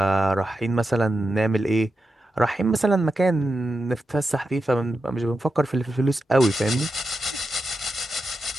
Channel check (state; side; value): normal; both; correlation 0.89